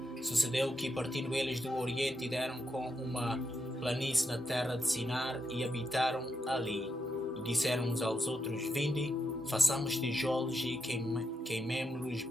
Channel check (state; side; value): normal; both; correlation 0.83